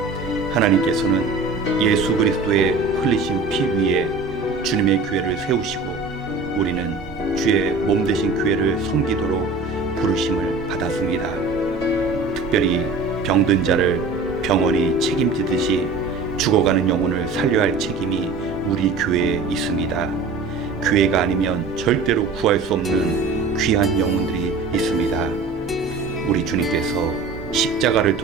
하나님께서는 예수 그리스도의 흘리신 피 위에 주님의 교회를 세우시고 우리는 주의 몸 되신 교회를 섬기도록 부르심을 받았습니다. 특별히 병든 자를 병원이 책임지듯이 죽어가는 영혼을 살려야 할 책임이 우리 교회에 있습니다. 교회가 아니면 절대로 구할 수 없는 귀한 영혼들이 있습니다. 우리 주님께서 십자가를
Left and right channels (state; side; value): quieter; left; 3.9 dB